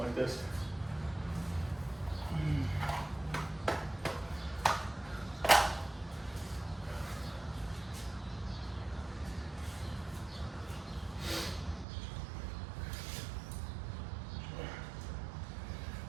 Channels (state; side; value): drops out; left; at 11.9 s